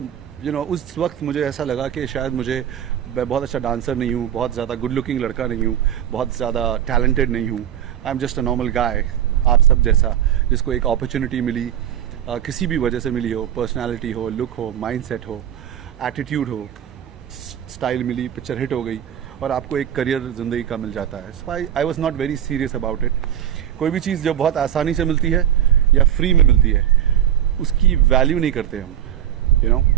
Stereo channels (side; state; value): left; quieter; 10.4 dB